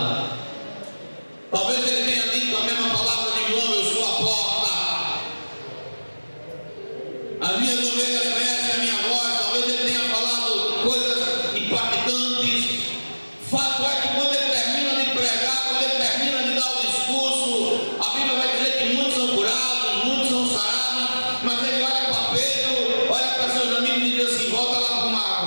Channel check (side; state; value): both; inverted; correlation -1.00